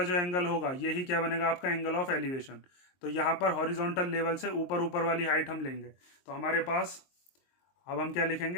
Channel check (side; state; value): right; late; 23 ms